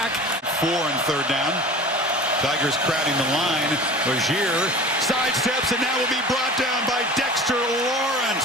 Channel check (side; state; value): both; normal; correlation 0.39